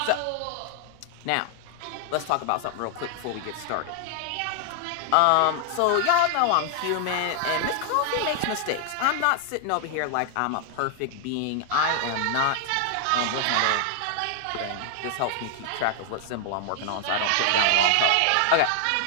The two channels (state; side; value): different; both; correlation 0.00